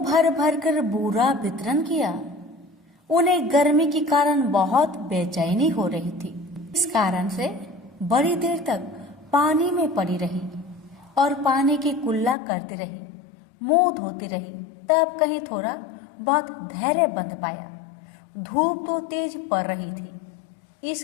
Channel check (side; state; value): right; drops out; at 12.4 s